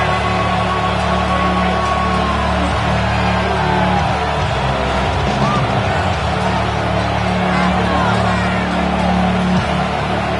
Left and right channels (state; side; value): identical; both; correlation 1.00